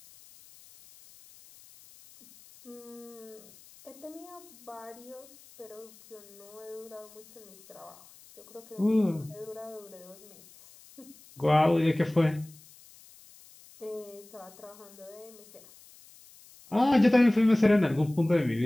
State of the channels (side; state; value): left; noise; hiss, 23 dB below the sound